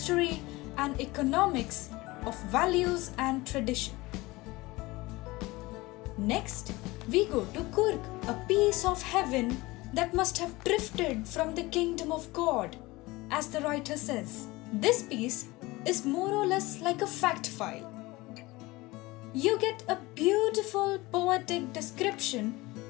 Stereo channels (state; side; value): quieter; right; 21.1 dB